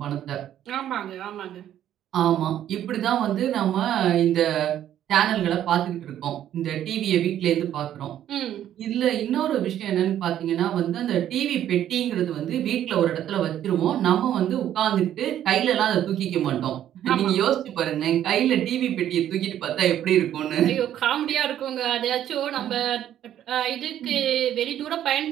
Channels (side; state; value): left; quieter; 11.2 dB